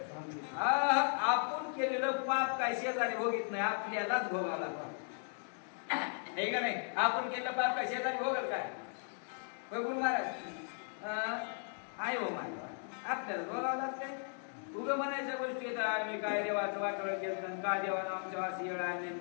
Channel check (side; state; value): right; silent; 53 dB below the other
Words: आपण केलेलं पाप काय शेजारी भोगीत नाही, आपल्यालाच भोगावं लागतं. हे का नाही? आपण केलेलं पाप काय शेजारी भोगल काय? गुरु महाराज आहे हो माझ्या, आपल्याला भोगावं लागतंय. उगं म्हणायच्या गोष्टी येतात आम्ही काय देवाचं वाटोळं केलं, का देवानं आमच्या अशी येळ आणली,